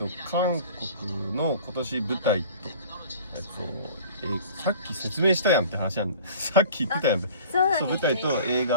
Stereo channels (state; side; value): inverted; both; correlation -0.44